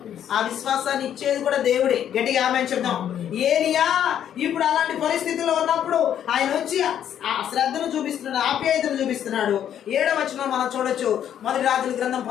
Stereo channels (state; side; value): quieter; right; 9.9 dB